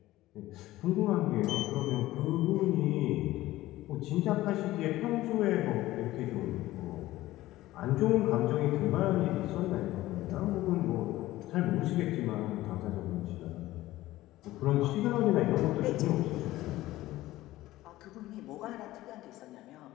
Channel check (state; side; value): quieter; right; 16.4 dB